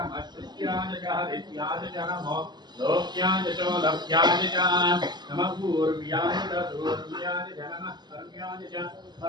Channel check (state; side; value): late; left; 0.21 ms